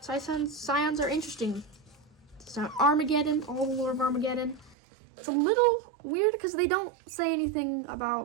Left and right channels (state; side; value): drops out; left; at 4.8 s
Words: Scions are interesting. So Armageddon, all the lore of Armageddon. It's a little weird because they don't say anything